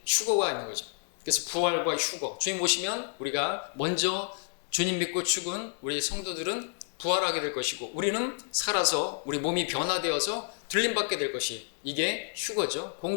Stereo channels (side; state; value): right; silent; 58 dB below the other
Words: 휴거가 있는 거죠. 그래서 부활과 휴거, 주님 오시면 우리가 먼저 주님 믿고 죽은 우리 성도들은 부활하게 될 것이고 우리는 살아서 우리 몸이 변화되어서 들림받게 될 것이에요. 이게 휴거죠.